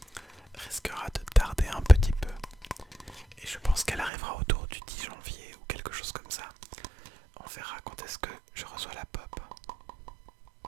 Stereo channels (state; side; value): drops out; left; at 4.1 s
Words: risquera de tarder un petit peu. Et je pense qu'elle arrivera autour du 10 janvier ou quelque chose comme ça. On verra quand est-ce que je reçois la pop.